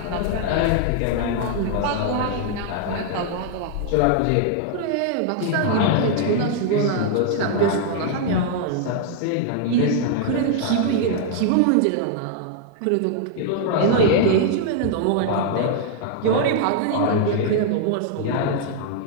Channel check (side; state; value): both; different; correlation 0.00